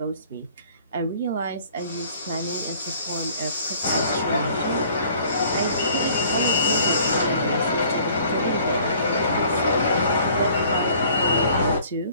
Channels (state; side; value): inverted; both; correlation -0.55